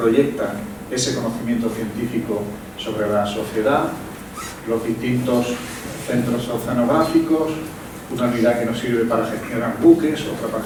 ese conocimiento científico sobre la sociedad, los distintos centros oceanográficos, una unidad que nos sirve para gestionar buques, otra para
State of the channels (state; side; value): identical; both; correlation 1.00